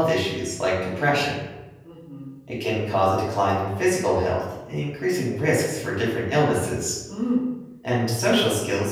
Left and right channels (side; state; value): both; identical; correlation 1.00